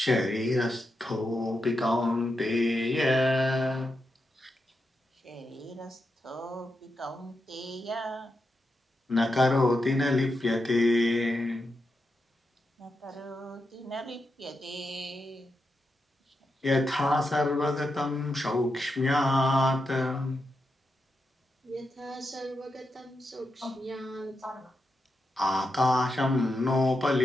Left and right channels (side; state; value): both; normal; correlation 0.86